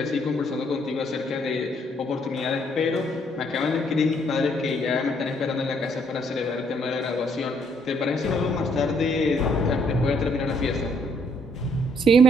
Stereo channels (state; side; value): normal; both; correlation 0.68